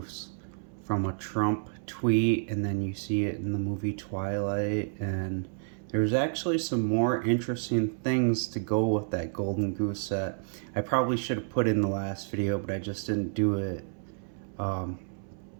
from a Trump tweet, and then you see it in the movie Twilight, and there's actually some more interesting things to go with that Golden Goose set. I probably should have put in the last video, but I just didn't do it.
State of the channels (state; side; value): silent; left; 58 dB below the other